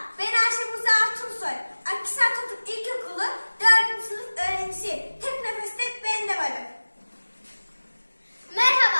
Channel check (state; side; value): inverted; both; correlation -1.00